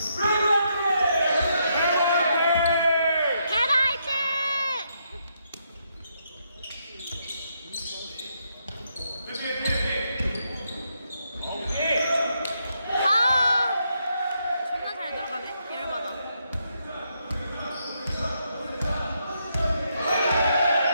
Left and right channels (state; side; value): inverted; both; correlation -0.78